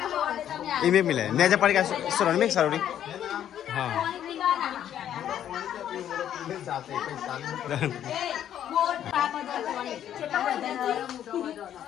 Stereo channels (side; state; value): right; quieter; 10.5 dB